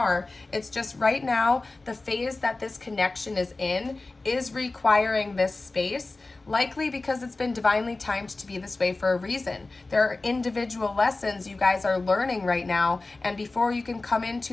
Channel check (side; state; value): right; quieter; 3.3 dB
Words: It's just right now, the phase that this connection is in is requiring this space, likely because it's been divinely timed to be this way for a reason. There are individual lessons you guys are learning right now, and before you can come